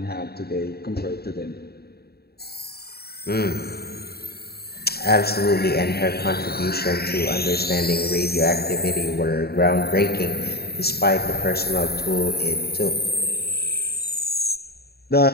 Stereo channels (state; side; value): late; right; 0.46 ms